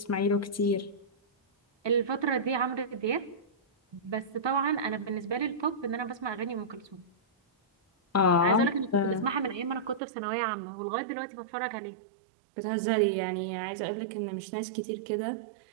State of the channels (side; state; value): left; drops out; at 10.0 s